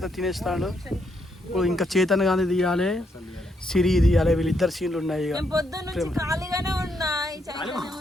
తినేస్తాడు. ఇప్పుడు ఇంకా చేతన్ గానీ తీయాలి, సిరి తీయాలి. వీళ్ళిద్దరు సీన్లు ఉన్నాయి. ఖాళీగానే ఉన్నా.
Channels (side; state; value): both; normal; correlation 0.77